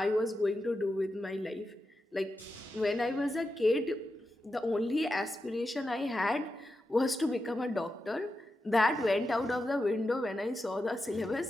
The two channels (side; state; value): both; normal; correlation 0.89